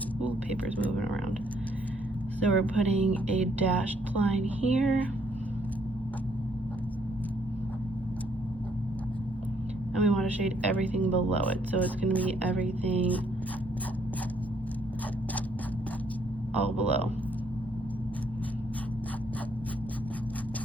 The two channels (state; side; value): normal; both; correlation 0.69